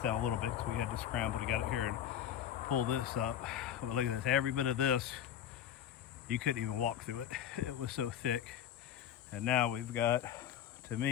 down a little bit because we had to scramble to get it here and pull this up. But look at this, every bit of this, you couldn't even walk through it. It was so thick. And now we've got, to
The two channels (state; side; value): quieter; right; 10.0 dB